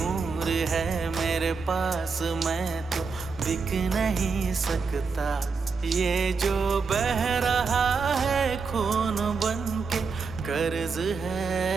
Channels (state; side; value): quieter; left; 4.9 dB